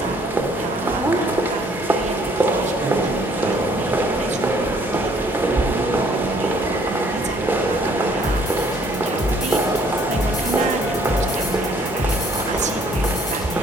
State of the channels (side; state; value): both; normal; correlation 0.62